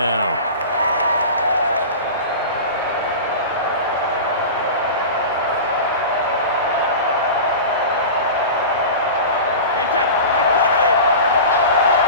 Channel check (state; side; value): inverted; both; correlation -0.31